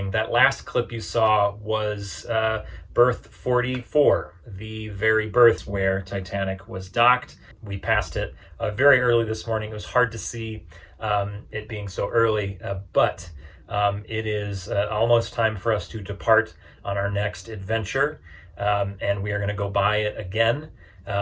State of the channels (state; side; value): identical; both; correlation 1.00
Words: That last clip you saw was berth 44, the very berth where Titanic was docked. We passed it very early this morning. It was hard to see it being so early, but it is almost time for us to depart on our next adventure, and we are going to go by it again,